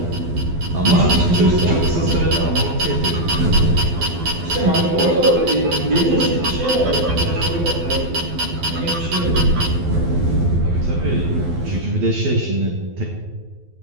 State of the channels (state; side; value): late; left; 12 ms